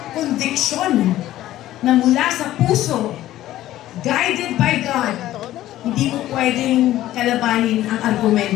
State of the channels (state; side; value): quieter; right; 14.3 dB